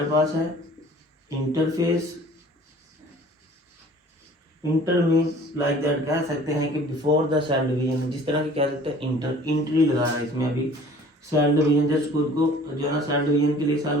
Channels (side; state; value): both; normal; correlation 0.49